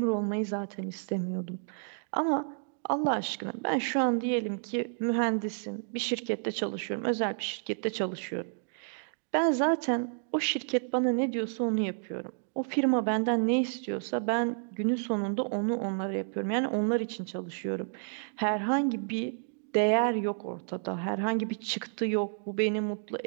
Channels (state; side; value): silent; left; digital silence